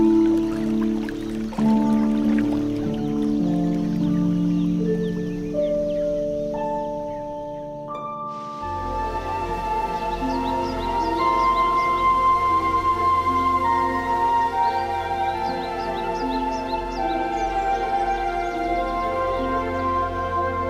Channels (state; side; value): identical; both; correlation 1.00